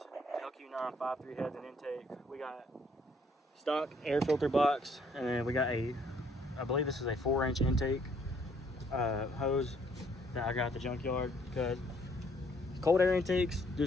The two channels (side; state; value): both; normal; correlation 0.65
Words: LQ953 heads and intake. We got stock air filter box, and then we got a, I believe this is a 4-inch intake hose that I got at the junkyard, because cold air intakes